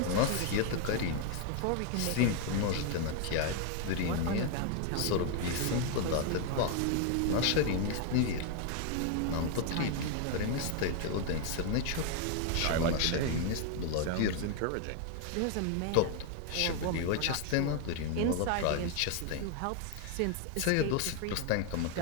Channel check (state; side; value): different; both; correlation 0.01